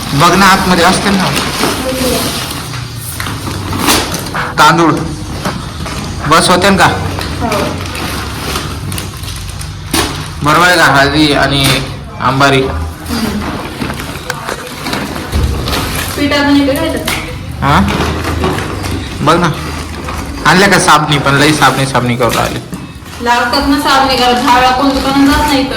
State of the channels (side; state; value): both; identical; correlation 1.00